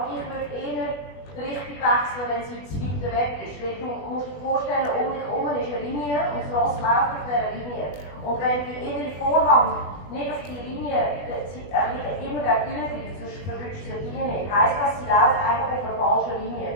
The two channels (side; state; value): right; late; 20 ms